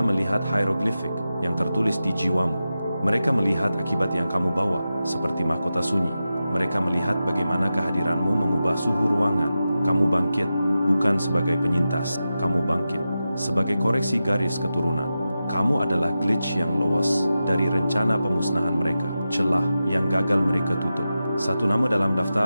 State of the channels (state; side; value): inverted; both; correlation -0.92